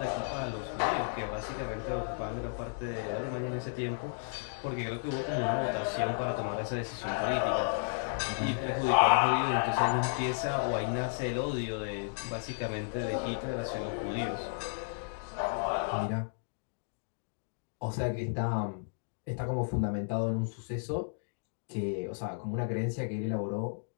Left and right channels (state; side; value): silent; right; digital silence